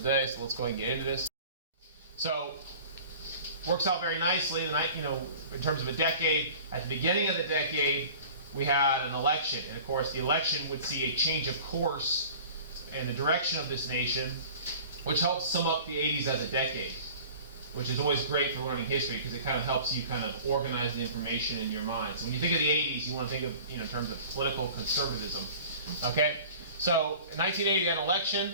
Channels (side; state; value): both; inverted; correlation -0.43